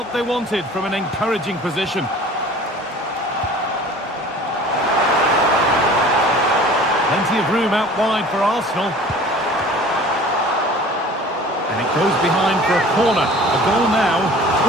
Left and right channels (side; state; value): both; normal; correlation 0.45